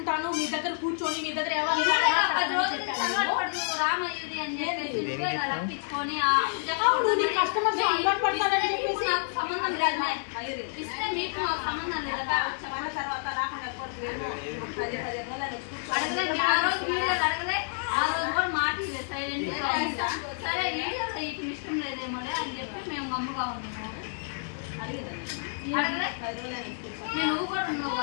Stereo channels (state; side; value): silent; right; 59 dB below the other